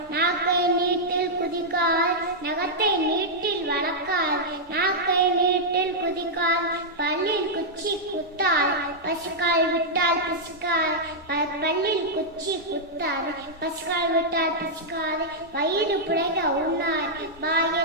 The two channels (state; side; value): normal; both; correlation -0.06